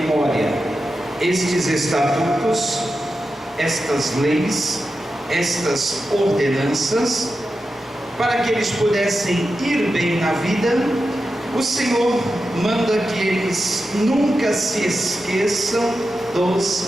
estes estatutos, estas leis, estas ordenanças, para que eles pudessem ir bem na vida, o Senhor manda que eles nunca se esqueçam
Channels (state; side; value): normal; both; correlation 0.90